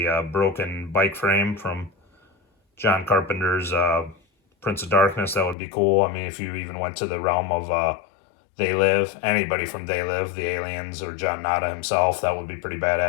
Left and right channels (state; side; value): drops out; right; at 5.6 s